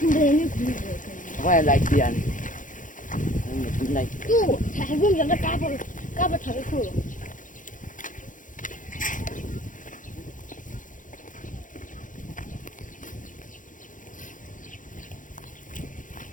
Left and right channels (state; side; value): late; right; 0.38 ms